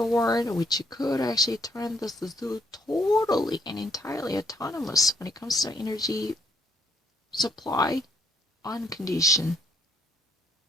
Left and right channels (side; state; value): both; normal; correlation 0.70